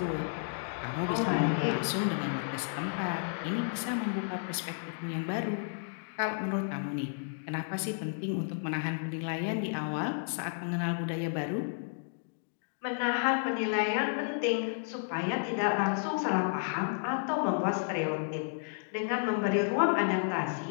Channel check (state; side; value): silent; right; digital silence